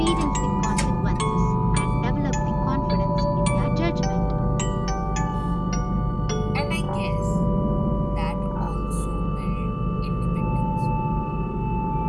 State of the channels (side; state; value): both; identical; correlation 1.00